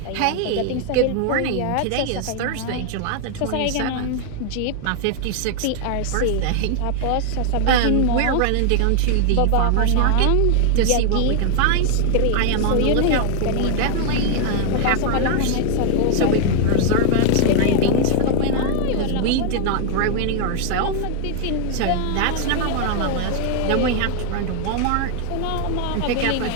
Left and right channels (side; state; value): both; different; correlation 0.00